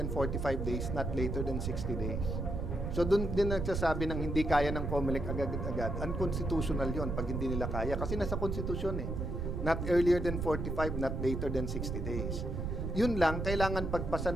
45 days, not later than 60 days. So doon din nagsasabi ng hindi kaya ng COMELEC agad-agad. Unconstitutional yon pag hindi nila kaya. Kasi nasa konstitusyon eh. Not earlier than 45, not later than 60 days. Yun lang, kailangan pagpasa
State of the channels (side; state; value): right; noise; rumble, 2 dB below the sound